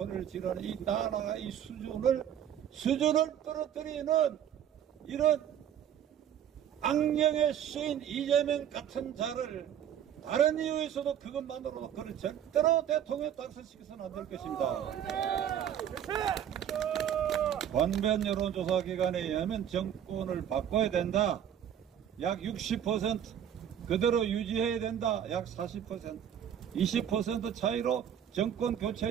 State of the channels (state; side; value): quieter; left; 9.6 dB